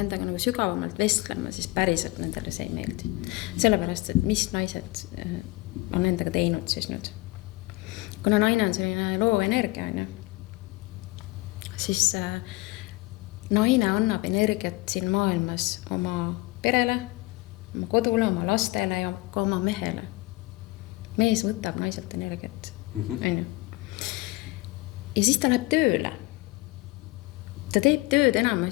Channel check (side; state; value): right; quieter; 22.0 dB